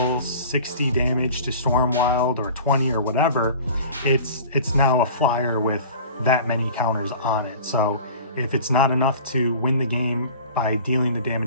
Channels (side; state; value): both; inverted; correlation -0.42